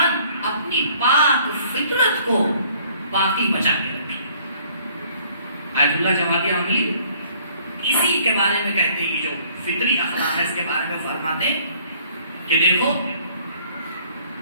اپنی پاک فطرت کو باقی بچا کے رکھے۔ آیت اللہ جوادی عملی اسی کے بارے میں کہتے ہیں، جو فطری اخلاق ہے اس کے بارے میں فرماتے ہیں کہ دیکھو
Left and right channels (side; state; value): both; inverted; correlation -0.58